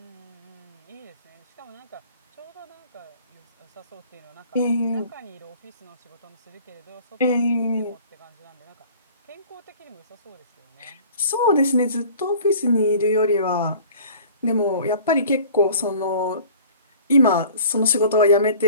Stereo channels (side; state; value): both; inverted; correlation -0.48